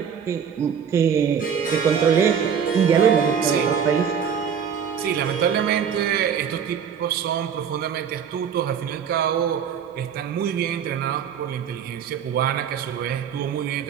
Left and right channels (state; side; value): quieter; left; 7.6 dB